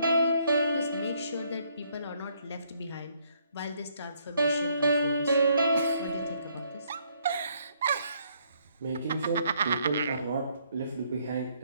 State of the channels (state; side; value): inverted; both; correlation -0.69